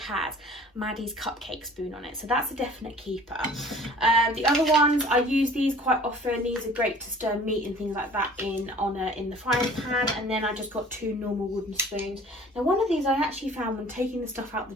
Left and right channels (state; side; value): normal; both; correlation 0.48